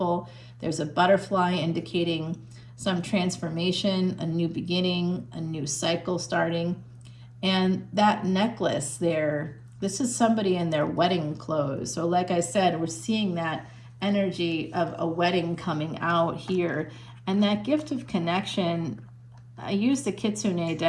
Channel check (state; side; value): identical; both; correlation 1.00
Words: There's a butterfly indicating some transformation, a new beginning, a new cycle starting. And that necklace there, this is somebody in their wedding clothes. So like I said, we're seeing that energy of a wedding coming out here. And that gift of connection, I use the Kitsune